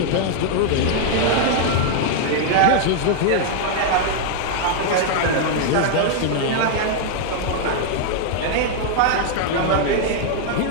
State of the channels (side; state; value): both; different; correlation -0.01